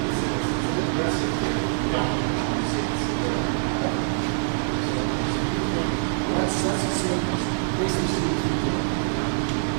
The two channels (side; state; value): left; silent; digital silence